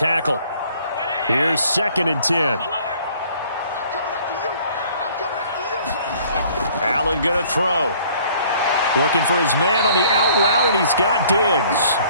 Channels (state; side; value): inverted; both; correlation -0.57